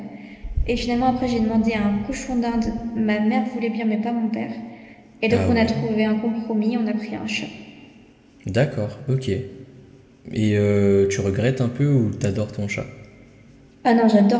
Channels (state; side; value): identical; both; correlation 1.00